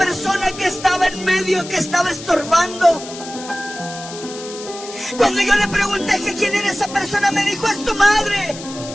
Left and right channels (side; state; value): left; noise; hiss, 13 dB below the sound